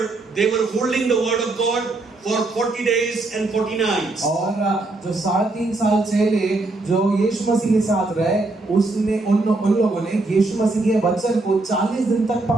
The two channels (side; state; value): left; quieter; 3.1 dB